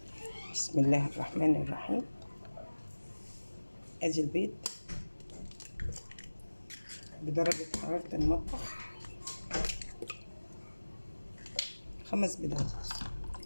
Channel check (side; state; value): both; inverted; correlation -1.00